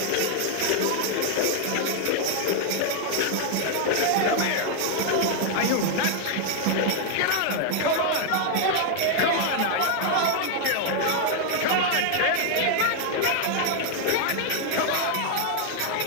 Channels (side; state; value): both; different; correlation 0.00